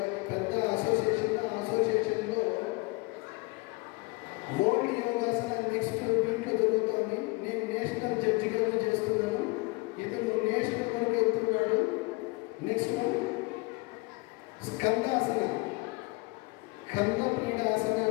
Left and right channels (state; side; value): quieter; right; 26.1 dB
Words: పెద్ద అసోసియేషన్. ఆ అసోసియేషన్లో వరల్డ్ యోగాసన నెక్స్ట్ వీక్లో జరుగుతుంది. నేను నేషనల్ జడ్జిగా చేస్తున్నాను, ఇతను నేషనల్ వరకు వెళ్తున్నాడు. నెక్స్ట్ వన్ స్కందాసన, కంద పీడాసన